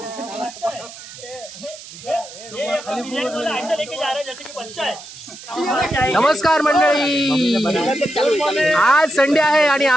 ऐसा लेके जा रहे हैं जैसे कि बच्चा है। नमस्कार मंडळी, आज संडे आहे आणि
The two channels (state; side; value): noise; right; hiss, 16 dB below the sound